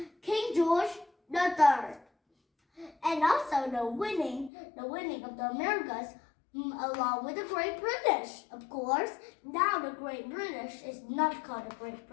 King George III. And also the winning of the Americas, along with the Great British, of course. Now the Great British is not called the Great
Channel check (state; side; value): drops out; right; at 4.5 s